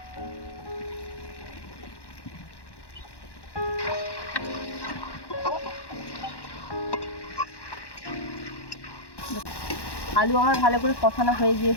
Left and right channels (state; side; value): late; right; 1.1 ms